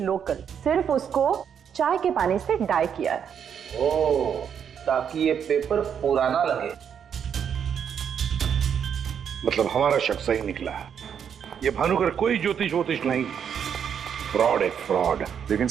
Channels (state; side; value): quieter; left; 8.0 dB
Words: सिर्फ उसको चाय के पानी से डाई किया है। ओह, ताकि ये पेपर पुराना लगे। मतलब हमारा शक सही निकला है। ये भानुकर कोई ज्योतिष नहीं, फ्रॉड है, फ्रॉड। लेकिन